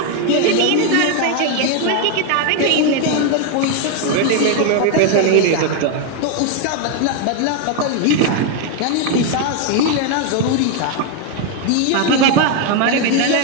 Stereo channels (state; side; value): different; both; correlation 0.01